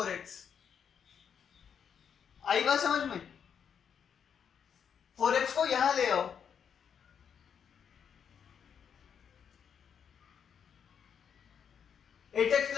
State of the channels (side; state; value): right; quieter; 7.6 dB